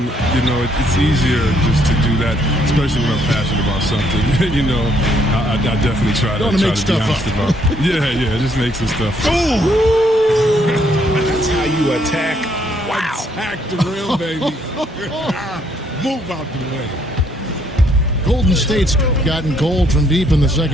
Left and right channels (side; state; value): both; normal; correlation 0.69